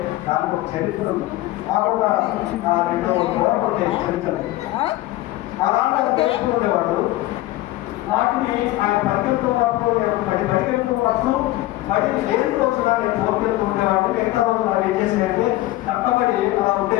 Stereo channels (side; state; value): right; quieter; 17.2 dB